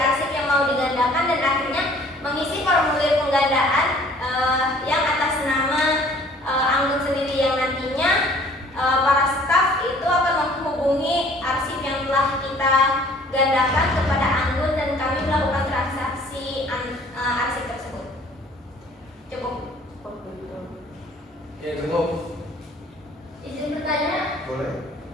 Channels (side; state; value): both; normal; correlation 0.54